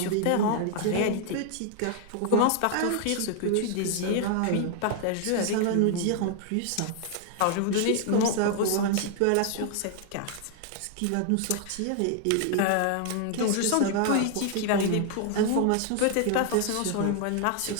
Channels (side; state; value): both; different; correlation 0.00